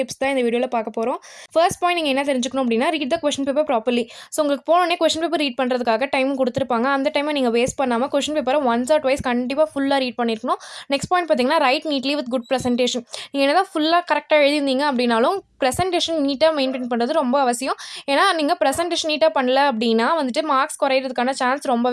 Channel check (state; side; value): identical; both; correlation 1.00